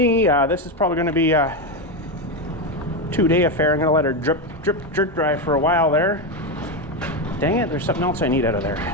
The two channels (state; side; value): normal; both; correlation 0.11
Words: this is probably going to be a 2-day affair. I'm going to let her drip, drip dry for a while there. Dang it, there's something else I need out of there.